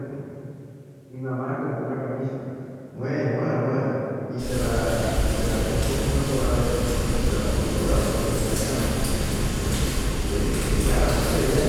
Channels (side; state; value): both; identical; correlation 1.00